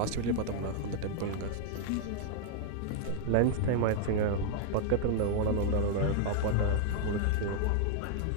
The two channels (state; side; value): different; both; correlation 0.00